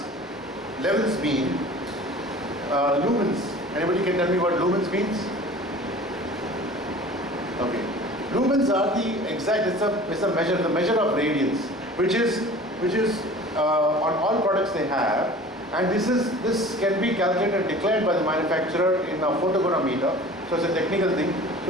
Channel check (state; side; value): normal; both; correlation 0.43